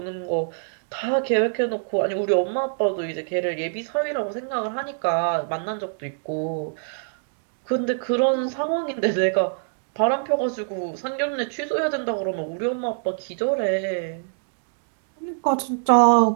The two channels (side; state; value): left; silent; digital silence